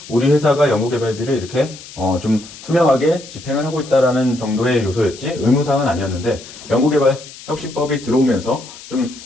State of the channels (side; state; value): left; noise; hiss, 17 dB below the sound